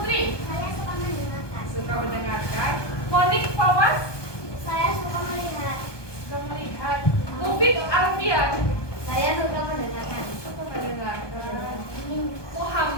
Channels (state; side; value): late; right; 1.2 ms